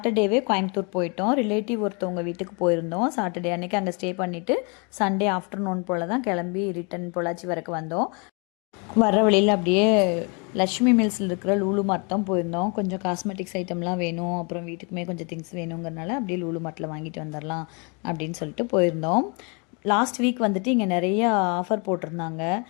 கோயம்புத்தூர் போயிட்டோம். ரிலேட்டிவ் ஒருத்தவங்க வீட்டுக்கு போயிருந்தோம். சாட்டர்டே அன்றைக்கி அங்கே ஸ்டே பண்ணிவிட்டு சண்டே ஆஃப்டர்நூன் போல் தான் கிளம்பி ரிட்டன் பொள்ளாச்சி வரைக்கும் வந்தோம். வர வழியில் அப்படியே லக்ஷ்மி மில்ஸில் இருக்கிற லூலு மார்ட் தான் போயிருந்தோம். கொஞ்சம் காஸ்மெட்டிக்ஸ் ஐட்டம்லாம் வேணும், அப்புறம் வீட்டுக்குமே கொஞ்சம் திங்ஸ் வேணுங்கிறனால அப்படியே லூலு மார்ட்டில் வாங்கிட்டு வந்துடலாம் அப்படின்னு சொல்லிட்டு போயிருந்தோம். லாஸ்ட் வீக் வந்துட்டு இங்கே நிறைய ஆஃபர் போட்டிருந்தாங்க.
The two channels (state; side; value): quieter; right; 33.5 dB